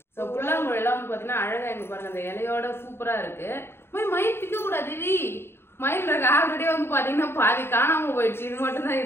ஸோ புல்லாங்குழல் எல்லாம் வந்து பாத்தீங்கன்னா அழகா இங்க பாருங்க அந்த இலையோட சூப்பரா இருக்கு. மயில் பிக்க கூடாது, மயில் இருக்கு. ஆல்ரெடி வந்து பாத்தீங்கன்னா பாதி காணாம போயிடுச்சு, இது மட்டும் தான்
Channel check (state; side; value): late; right; 0.11 ms